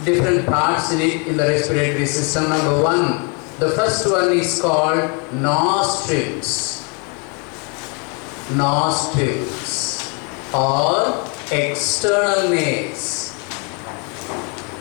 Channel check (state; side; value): quieter; right; 35.1 dB